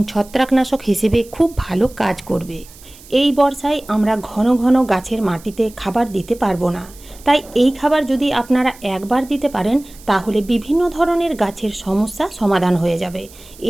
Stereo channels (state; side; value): noise; right; hiss, 22 dB below the sound